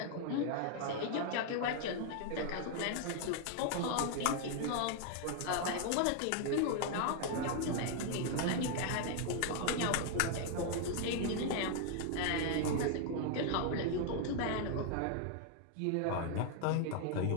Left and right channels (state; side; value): different; both; correlation 0.00